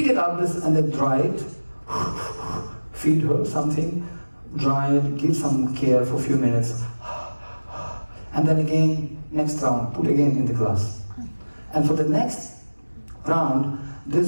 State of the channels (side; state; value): both; inverted; correlation -1.00